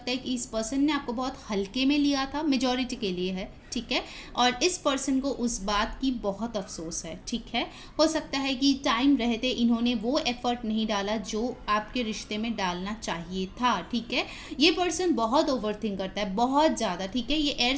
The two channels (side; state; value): both; identical; correlation 1.00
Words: है कि इस पर्सन ने आपको बहुत हल्के में लिया था, मेजॉरिटी के लिए है, ठीक है। और इस पर्सन को उस बात की बहुत अफसोस है, ठीक है। हो सकता है कि टाइम रहते इन्होंने वो एफर्ट नहीं डाला जो आपके रिश्ते में डालना चाहिए था, ठीक है। ये पर्सन बहुत ओवरथिंक करता है, बहुत ज़्यादा, ठीक है। ये एयर